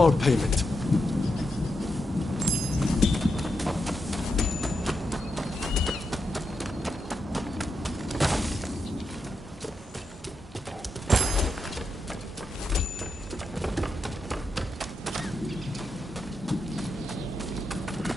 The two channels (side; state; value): both; normal; correlation 0.85